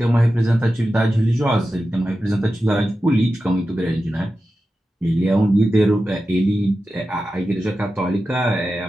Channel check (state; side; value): normal; both; correlation 0.92